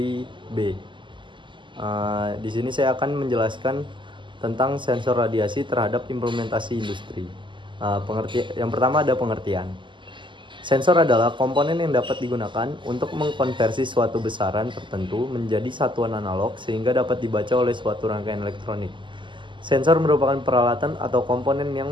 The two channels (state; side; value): late; left; 0.24 ms